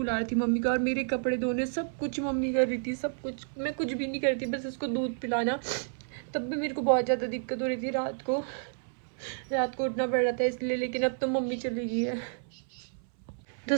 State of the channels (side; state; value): left; silent; 57 dB below the other